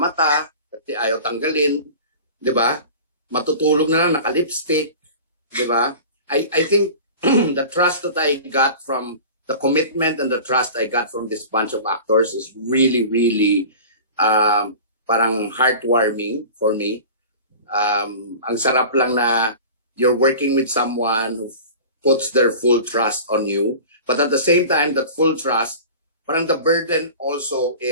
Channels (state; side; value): inverted; both; correlation -0.38